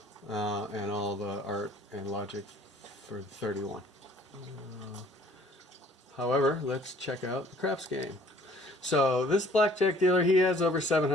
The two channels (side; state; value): both; normal; correlation 0.56